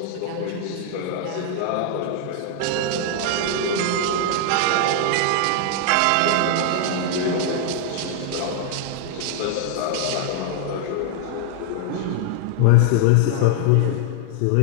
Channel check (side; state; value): both; different; correlation 0.00